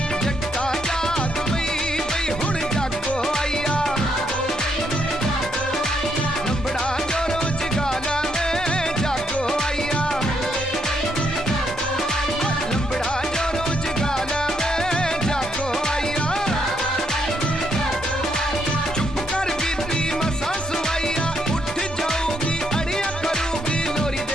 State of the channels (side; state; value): both; normal; correlation 0.75